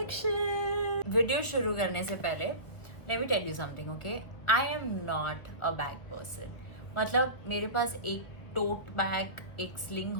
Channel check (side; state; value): right; late; 1.6 ms